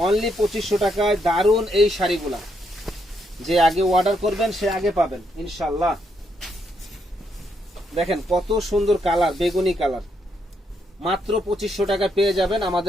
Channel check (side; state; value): both; normal; correlation 0.77